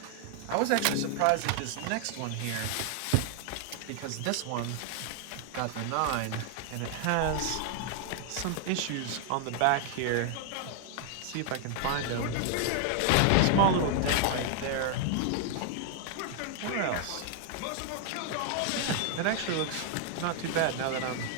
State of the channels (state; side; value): different; both; correlation 0.00